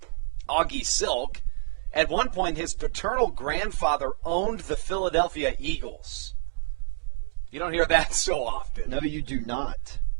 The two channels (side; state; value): left; silent; digital silence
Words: Augie Silk. At one point, his paternal grandfather owned the Philadelphia Eagles. You don't hear that so often. No, you do not.